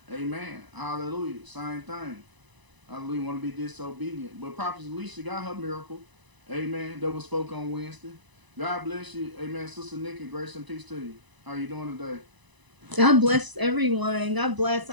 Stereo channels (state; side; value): late; left; 1.0 ms